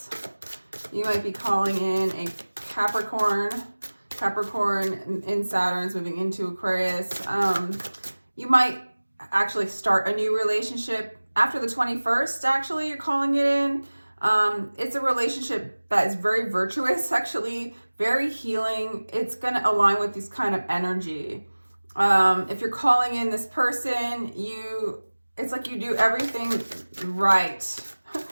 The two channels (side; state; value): both; inverted; correlation -1.00